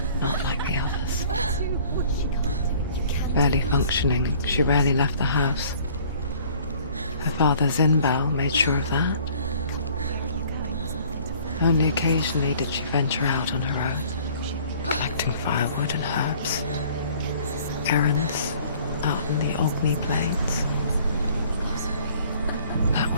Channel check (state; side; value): inverted; both; correlation -0.53